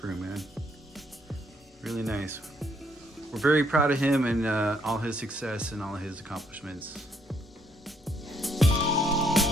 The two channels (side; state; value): both; normal; correlation 0.70